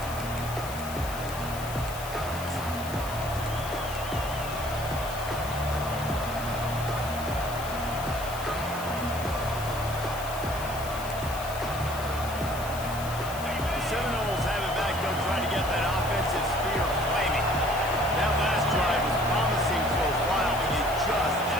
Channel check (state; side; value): noise; left; hiss, 12 dB below the sound